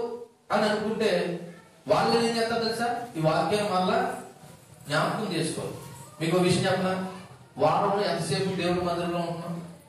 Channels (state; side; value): identical; both; correlation 1.00